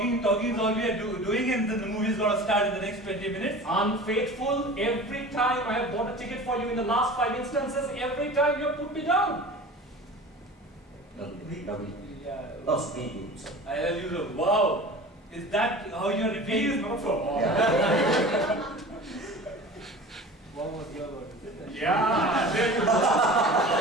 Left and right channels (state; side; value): normal; both; correlation 0.38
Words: we are doing, and then the movie is going to start in the next 20 minutes. Unfaithful, every time I have bought a ticket for you in the last 5 instances, every time you have put me down. No, speed. I tell you, wow, is that how you are repeating? Not for all. What was your word? Yeah, there you go.